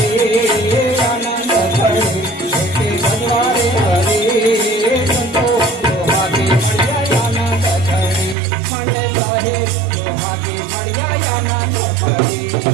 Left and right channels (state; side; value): drops out; left; at 8.3 s